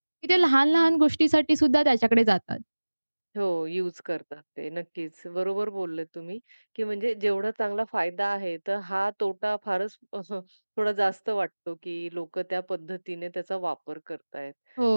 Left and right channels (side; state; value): both; inverted; correlation -1.00